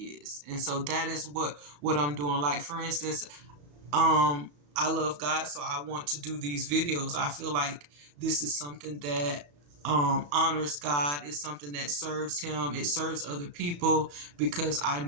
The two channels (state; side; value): late; left; 34 ms